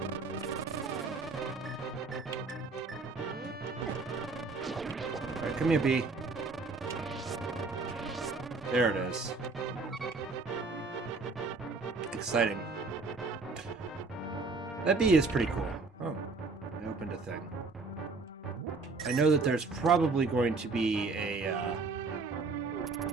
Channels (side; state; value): left; quieter; 4.0 dB